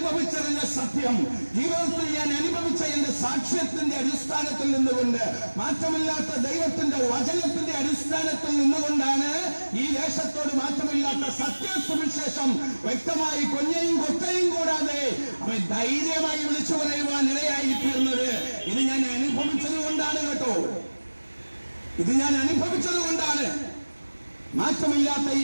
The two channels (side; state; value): both; inverted; correlation -1.00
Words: സത്യം, ജീവിതത്തിൽ ഞാൻ അനുഭവിച്ച എന്റെ സാക്ഷ്യത്തിന്റെ അടിസ്ഥാനത്തിൽ നിന്നുകൊണ്ട്, മാറ്റമില്ലാത്ത ദൈവത്തിന്റെ വചനത്തിന്റെ അടിസ്ഥാനത്തിൽ നിന്നുകൊണ്ടാണ് ഈ ദേശത്തോട് മാറ്റമില്ലാത്ത സത്യസുവിശേഷം വ്യക്തമായി കൊഞ്ഞയും കൊത്തയും കൂടാതെ അവൻ ധൈര്യമായി വിളിച്ചു പറയുവാൻ ഇടയായി തീർന്നത്. ഇത് ഞാൻ അനുഭവിച്ചത് കൊണ്ടാണ് കേട്ടോ, ഇത് ഞാൻ അനുഭവിച്ചത് കൊണ്ടാണ്. മാറ്റമില്ലാത്ത ഈ